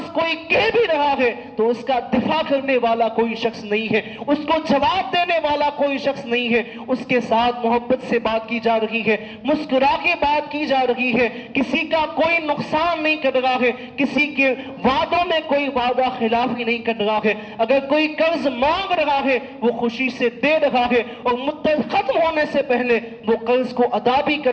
کوئی کہہ بھی رہا ہے تو اس کا دفاع کرنے والا کوئی شخص نہیں ہے, اس کو جواب دینے والا کوئی شخص نہیں ہے, اس کے ساتھ محبت سے بات کی جا رہی ہے, مسکرا کے بات کی جا رہی ہے, کسی کا کوئی نقصان نہیں کر رہا ہے, کسی کے وعدوں میں کوئی وعدہ خلافی نہیں کر رہا ہے. اگر کوئی قرض مانگ رہا ہے وہ خوشی سے دے رہا ہے اور مدت ختم ہونے سے پہلے وہ قرض کو ادا بھی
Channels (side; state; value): both; identical; correlation 1.00